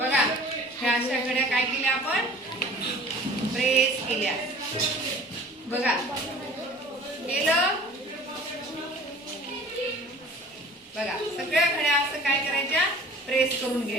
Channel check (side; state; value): both; normal; correlation 0.45